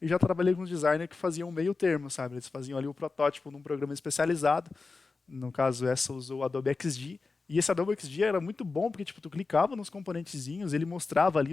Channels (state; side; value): quieter; right; 4.1 dB